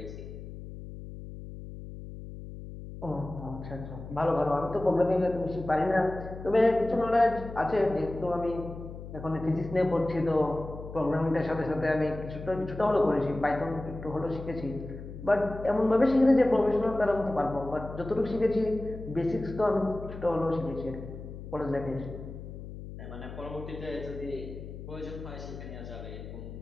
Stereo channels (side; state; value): left; noise; hum, 11 dB below the sound